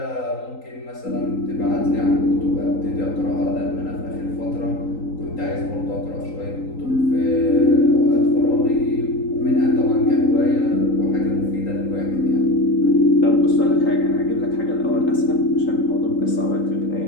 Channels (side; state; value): right; late; 3.8 ms